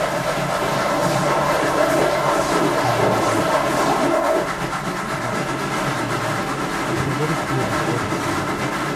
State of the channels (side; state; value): both; identical; correlation 1.00